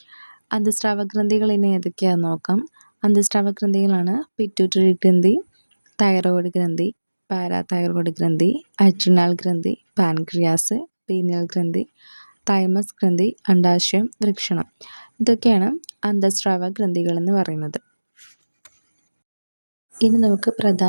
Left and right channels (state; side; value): inverted; both; correlation -1.00